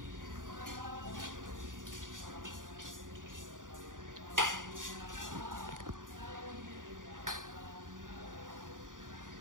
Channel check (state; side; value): late; left; 0.89 ms